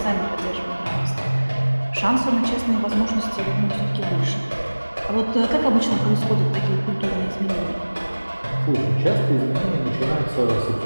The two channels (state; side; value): inverted; both; correlation -1.00